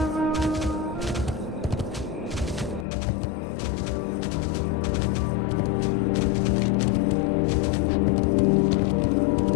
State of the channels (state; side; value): drops out; right; at 2.9 s